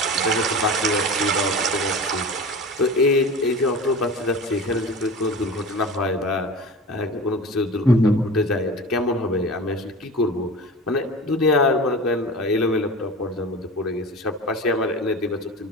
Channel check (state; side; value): normal; both; correlation 0.33